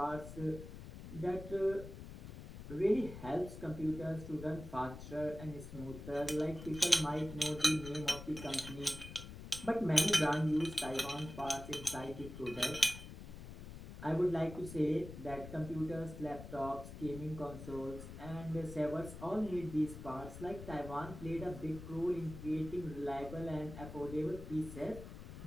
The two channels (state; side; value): noise; left; rumble, 12 dB below the sound